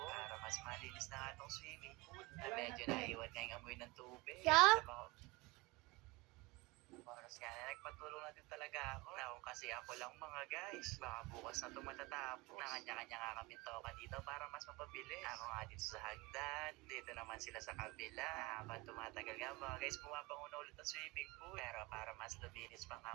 para mas malinis na nga itong swimming pool na medyo naiwan nga yung amoy ng tubig. Sa mga oras nga na nagpatulong na din talaga ako. Now, kasi ako lang mga guys. Baka bukas na ito matatapos. Nakanya-kanya nga kami toka dito para mas mapabilis. Ako nga dito sa hagdan. Dito naman sila sa kabila. Habang tumatagal nga mga guys, pumapanguna ulit ang swimming pool. Pero para mas luminis pa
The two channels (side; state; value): left; quieter; 23.5 dB